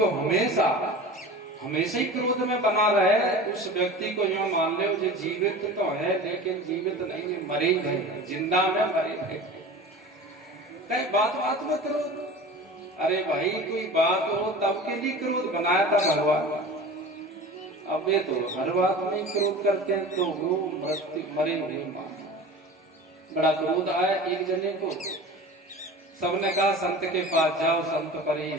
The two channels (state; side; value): normal; both; correlation 0.36